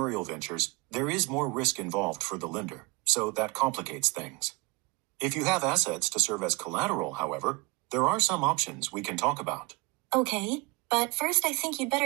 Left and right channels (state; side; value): quieter; left; 26.1 dB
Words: ventures, there is more risk involved for the lender, so that complicates things. If you have assets to serve as collateral, however, there are some options we can talk about. Okay, but first I think you'd